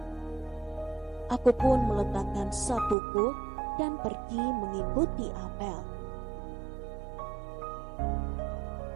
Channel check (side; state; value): left; drops out; at 3.0 s